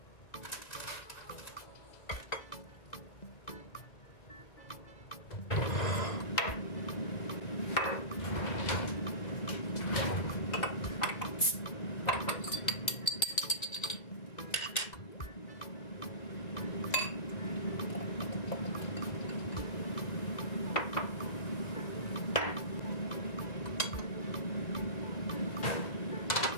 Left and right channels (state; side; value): late; right; 1.9 ms